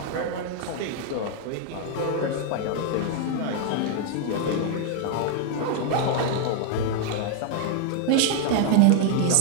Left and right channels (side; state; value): both; different; correlation 0.00